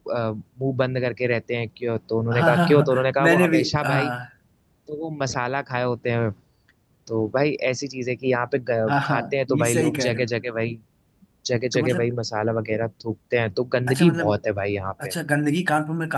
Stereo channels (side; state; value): both; identical; correlation 1.00